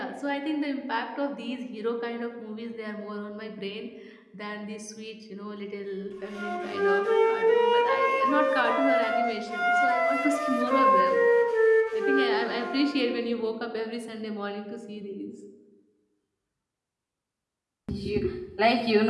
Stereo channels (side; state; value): both; identical; correlation 1.00